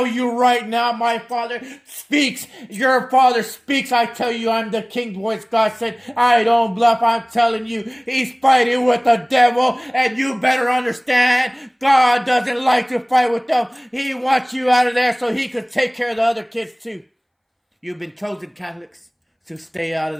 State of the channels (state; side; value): identical; both; correlation 1.00